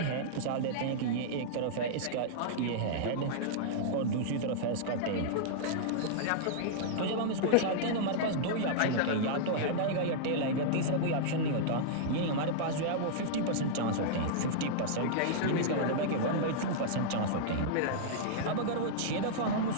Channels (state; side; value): different; both; correlation -0.02